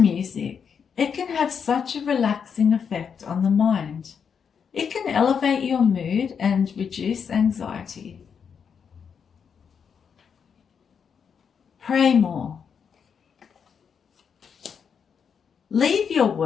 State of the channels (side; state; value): right; quieter; 6.8 dB